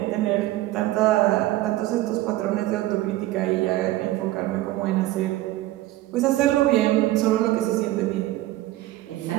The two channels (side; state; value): left; quieter; 16.2 dB